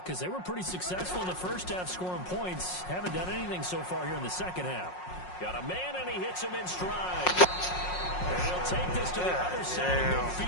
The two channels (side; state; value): right; late; 5.5 ms